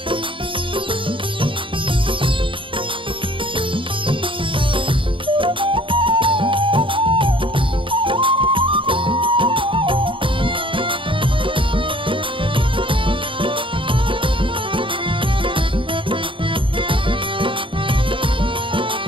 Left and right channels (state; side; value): late; left; 0.25 ms